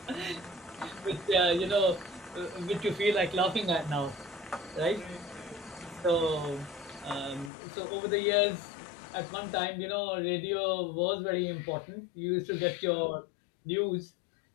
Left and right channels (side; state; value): right; drops out; at 7.5 s